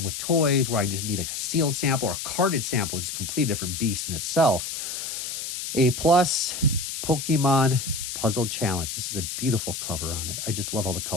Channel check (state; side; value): noise; left; hiss, 5 dB below the sound